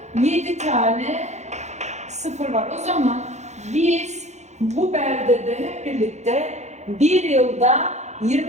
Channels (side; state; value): left; late; 0.33 ms